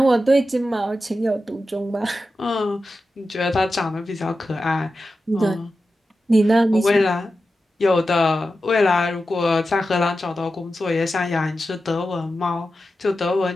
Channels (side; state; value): both; normal; correlation 0.91